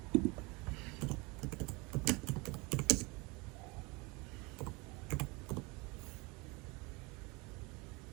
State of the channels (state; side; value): quieter; left; 26.0 dB